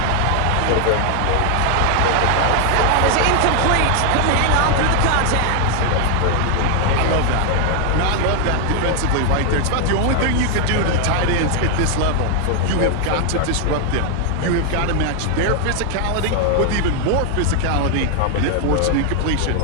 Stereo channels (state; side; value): different; both; correlation 0.00